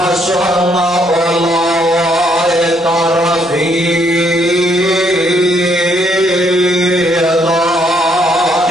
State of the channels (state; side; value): noise; left; hum, 27 dB below the sound